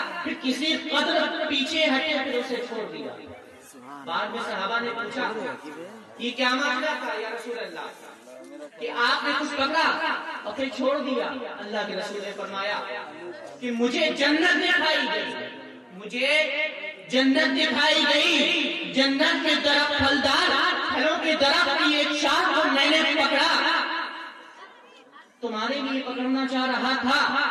پھر کسی قدر پیچھے ہٹے پھر اسے چھوڑ دیا۔ بعد میں صحابہ نے پوچھا یہ کیا معاملہ تھا یا رسول اللہ کہ آپ نے کچھ پکڑا اور پھر چھوڑ دیا؟ اللہ کے رسول نے فرمایا کہ مجھے جنت دکھائی گئی، مجھے جنت دکھائی گئی، جنت کے درخت پھلدار پھلوں کے درخت کی ایک شاخ کو میں نے پکڑا، تمہارے لیے پکڑنا چاہ رہا تھا،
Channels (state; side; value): identical; both; correlation 1.00